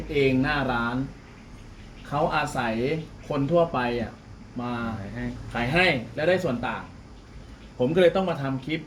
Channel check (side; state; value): both; identical; correlation 1.00